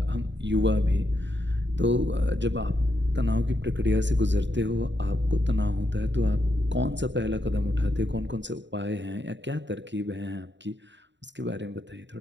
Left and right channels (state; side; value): late; left; 0.52 ms